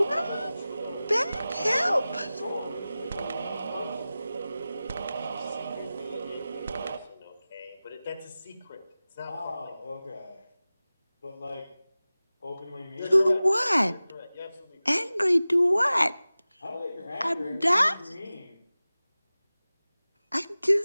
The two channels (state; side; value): inverted; both; correlation -0.97